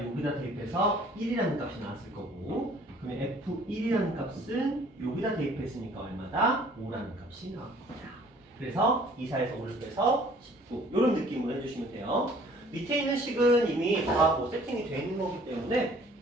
여기다 대입해서 1이라는 값이 나왔을 거고 그러면 F1이라는 값은 여기다 대입했으니까 얼마다? 5라는 값이 나올 겁니다. 그래서 2, 4에서 5를 빼서 19 이런 느낌으로 해주시면 돼요. 밑에 있는 식은 이미 다 뭐 세팅이 되어 있는 거기 때문에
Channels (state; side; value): normal; both; correlation 0.55